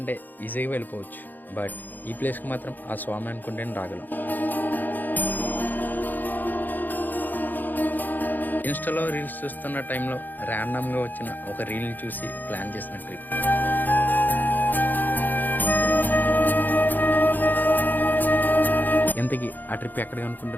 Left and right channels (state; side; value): late; right; 0.087 ms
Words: ఈజీగా వెళ్ళిపోవచ్చు. బట్ ఈ ప్లేస్కి మాత్రం ఆ స్వామి అనుకుంటేనే రాగలం. ఇన్స్టాలో రీల్స్ చూస్తున్న టైంలో ర్యాండమ్గా వచ్చిన ఒక రీల్ని చూసి ప్లాన్ చేసిన ట్రిప్. ఇంతకీ ఆ ట్రిప్ ఎక్కడికి